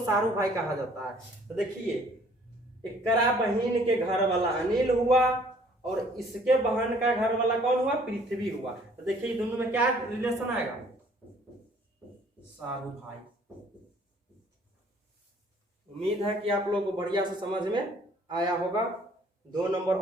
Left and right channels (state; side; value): normal; both; correlation 0.58